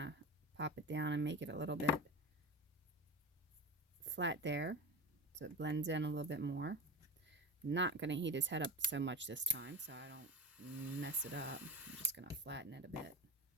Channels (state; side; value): normal; both; correlation 0.25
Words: pop it down and make it a little bit flat there so it blends in a little bit more. I'm not going to heat his head up so much this time so I don't mess it up. I'm just going to flatten it a bit.